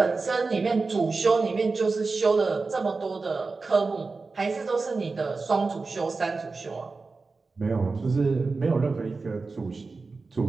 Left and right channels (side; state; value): left; quieter; 4.0 dB